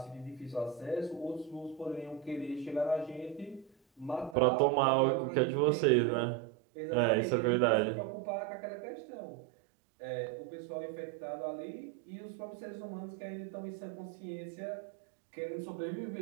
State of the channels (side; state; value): left; drops out; at 4.4 s